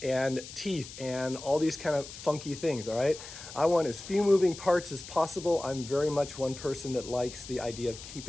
and teeth and all these kind of funky things. All right, I want as few moving parts as possible. I'm very much one person that likes the idea of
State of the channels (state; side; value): noise; left; hiss, 13 dB below the sound